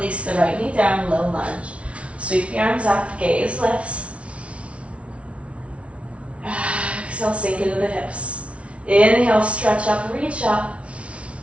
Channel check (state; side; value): late; left; 0.062 ms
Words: the right knee down, low lunge. Sweep the arms up, gaze lifts. Exhale, sink into the hips. Inhale, stretch up, reach up.